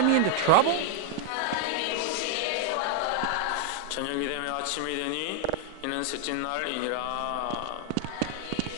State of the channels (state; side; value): different; both; correlation 0.00